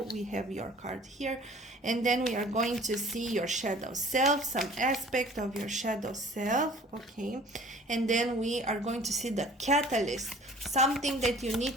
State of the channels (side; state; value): both; normal; correlation 0.49